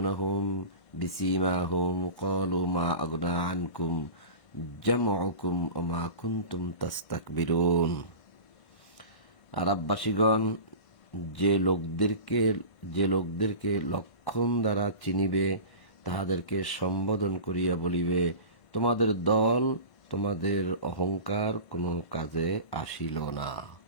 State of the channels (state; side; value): late; right; 1.5 ms